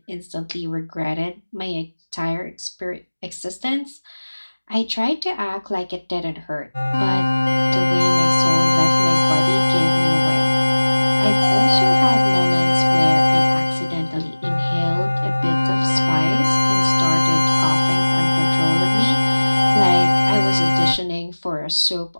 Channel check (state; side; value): inverted; both; correlation -1.00